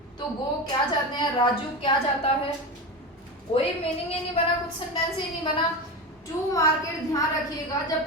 तो गो क्या जाते हैं, राजू क्या जाता है। कोई मीनिंग ही नहीं बना, कुछ सेंटेंस ही नहीं बना। टू मार्केट, ध्यान रखिएगा, जब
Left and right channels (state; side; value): normal; both; correlation 0.22